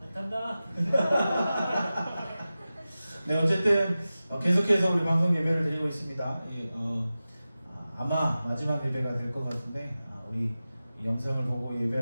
안 탄다. 네, 어쨌든 계속해서 우리 방송 예배를 드리고 있습니다. 아마 마지막 예배가 될 것 같은데 우리 이 영상을 보고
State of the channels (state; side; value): inverted; both; correlation -0.95